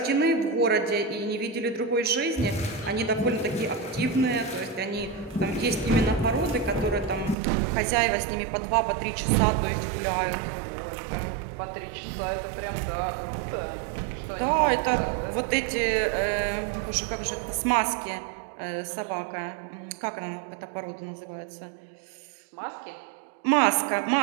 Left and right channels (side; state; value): left; drops out; at 7.4 s